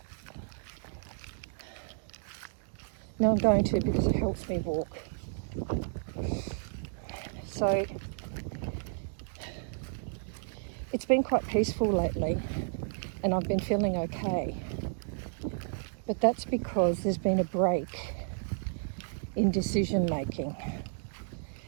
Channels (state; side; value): silent; left; digital silence